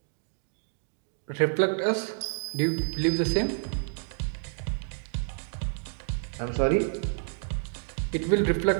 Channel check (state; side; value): silent; left; digital silence